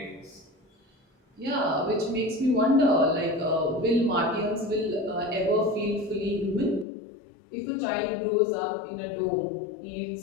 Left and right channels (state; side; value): drops out; right; at 6.9 s